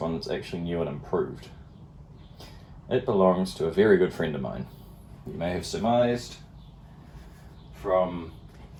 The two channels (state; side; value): identical; both; correlation 1.00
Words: one that's actually new and improved. It belongs to a very good friend of mine. You may have surmised from